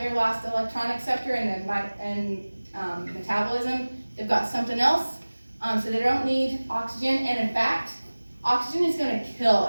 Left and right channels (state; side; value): inverted; both; correlation -1.00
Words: last electron acceptor in metabolism. They've got something else, so they don't need oxygen, and in fact, oxygen is gonna kill